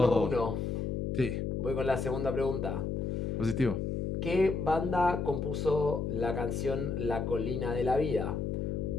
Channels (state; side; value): noise; left; hum, 1 dB below the sound